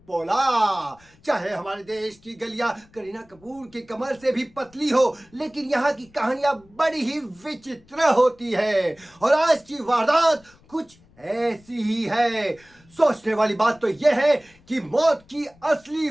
पोला। चाहे हमारे देश की गलियां करीना कपूर की कमर से भी पतली हो, लेकिन यहाँ की कहानियां बड़ी ही विचित्र होती है और आज की वारदात कुछ ऐसी ही है। सोचने वाली बात तो यह है कि मौत की असली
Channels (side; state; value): left; noise; rumble, 29 dB below the sound